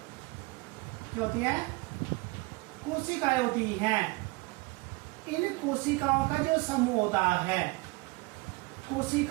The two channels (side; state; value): left; quieter; 25.1 dB